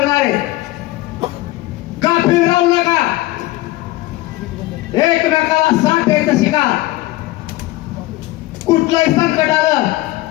आहे. गाफील राहू नका. एकमेकाला साथ द्यायचं शिका. कुठलंही संकट आलं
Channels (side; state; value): right; quieter; 18.0 dB